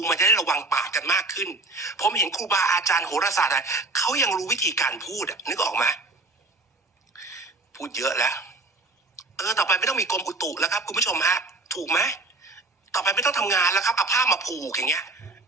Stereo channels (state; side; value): quieter; left; 3.0 dB